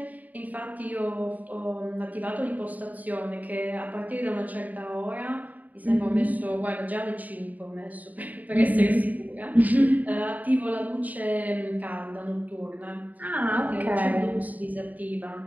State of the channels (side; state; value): left; late; 0.077 ms